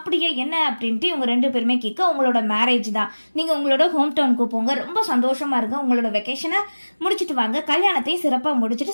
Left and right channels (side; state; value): both; inverted; correlation -1.00